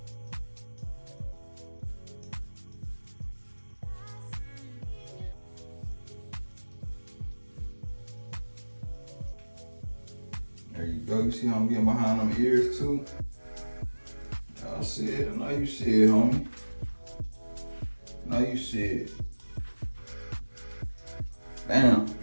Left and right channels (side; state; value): both; inverted; correlation -1.00